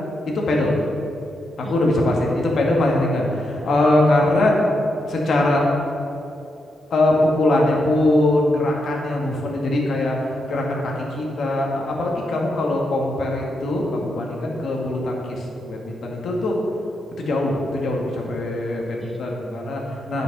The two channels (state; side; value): normal; both; correlation 0.83